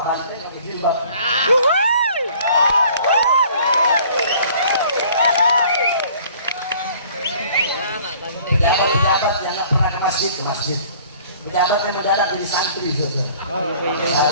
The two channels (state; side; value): inverted; both; correlation -0.54